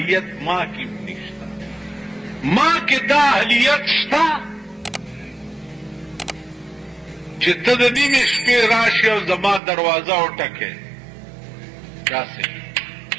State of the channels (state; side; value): drops out; left; at 9.6 s